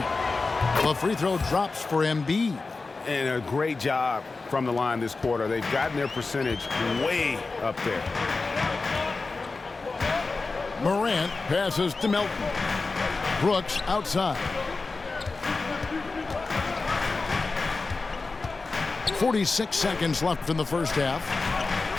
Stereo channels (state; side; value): quieter; right; 3.9 dB